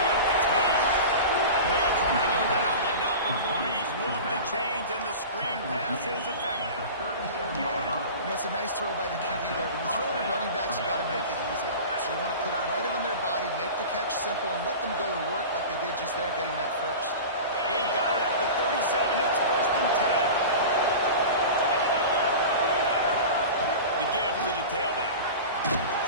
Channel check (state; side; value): inverted; both; correlation -0.33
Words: it's Haynes. They drag him down, but not before he's moved the chains, and the screen pass is effective. You know, it's a nice throw by the QB there. When you're throwing at running backs, you got to make it easy. So you want to put it right on their body, make the catch simple, and let them go to work like they did just there, getting that first. They've got it at the 37. It's first and 10. The give to the tailback.